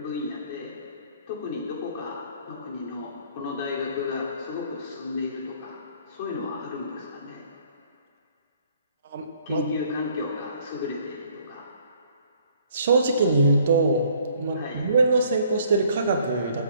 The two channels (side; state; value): both; inverted; correlation -0.60